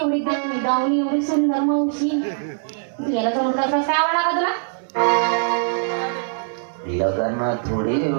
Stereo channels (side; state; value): left; silent; digital silence